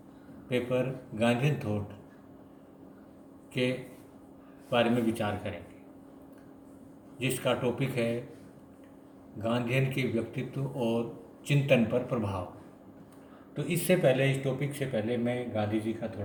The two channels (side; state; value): both; identical; correlation 1.00